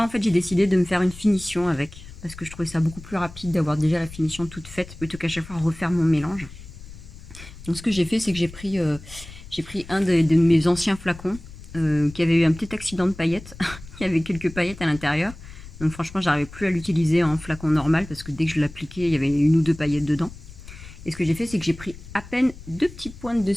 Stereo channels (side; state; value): left; noise; rumble, 16 dB below the sound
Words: en fait j'ai décidé de me faire une finition avec parce que je trouvais ça beaucoup plus rapide d'avoir déjà la finition toute faite plutôt qu'à chaque fois refaire mon mélange. Donc ce que j'ai fait c'est que j'ai pris un de mes anciens flacons qui avait eu un petit accident de paillettes. Il y avait quelques paillettes à l'intérieur. Donc franchement, j'arrivais plus à l'utiliser en flacon normal parce que dès que je l'appliquais, il y avait une ou deux paillettes dedans. Et ce que j'ai fait, c'est que j'ai pris à peine deux petites pointes de